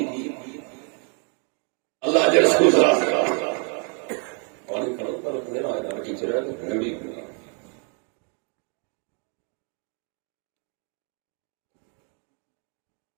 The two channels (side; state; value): left; quieter; 39.8 dB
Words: अल्लाह जे रसूल